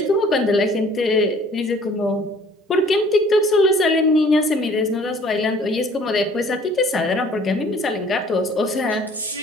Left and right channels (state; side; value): normal; both; correlation 0.54